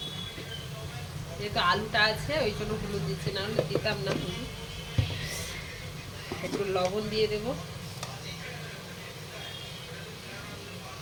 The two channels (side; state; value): both; identical; correlation 1.00